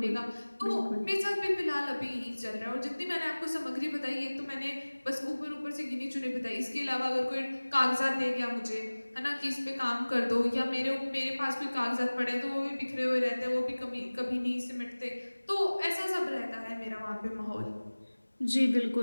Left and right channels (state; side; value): inverted; both; correlation -1.00